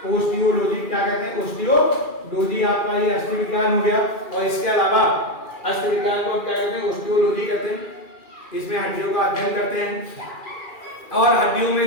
ऑस्टियोलॉजी। क्या कहते हैं? ऑस्टियोलॉजी आपका ये अस्थि विज्ञान हो गया। और इसके अलावा अस्थि विज्ञान को क्या कहते हैं? ऑस्टियोलॉजी कहते हैं। इसमें हड्डियों का अध्ययन करते हैं। और हड्डियों में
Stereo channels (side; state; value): right; late; 2.4 ms